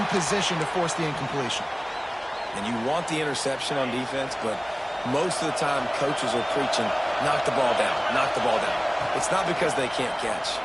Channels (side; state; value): both; identical; correlation 1.00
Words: position to force the incompletion. And you want the interception on defense, but most of the time coaches are preaching, knock the ball down, knock the ball down. It's not because they can't catch.